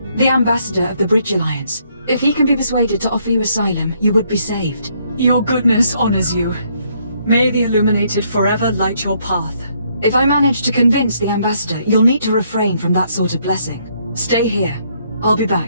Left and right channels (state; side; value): inverted; both; correlation -0.70